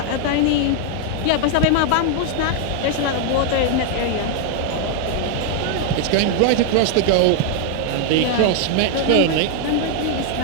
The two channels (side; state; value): both; different; correlation 0.00